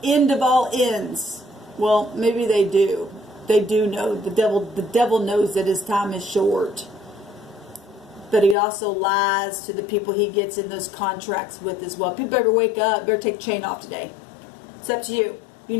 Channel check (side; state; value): right; drops out; at 8.6 s